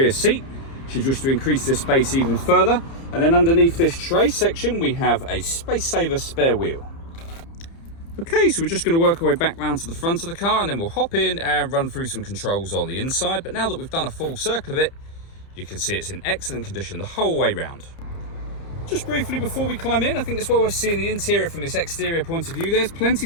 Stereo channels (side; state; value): right; late; 30 ms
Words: seat, should you wish to increase this space even further. And then underneath this tray section, we have a space saver spare wheel. Okay, so we're just going to work our way back round to the front of the car, and then we'll hop in and run through some controls on the inside. But now that we've done a full circle of it, you can see it's in excellent condition the whole way round. Just briefly before we climb in, I think it's well worth seeing the interior from this exterior point of view. There's